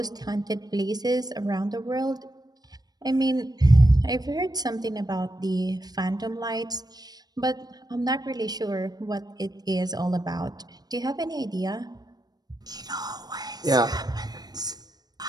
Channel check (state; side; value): late; left; 0.19 ms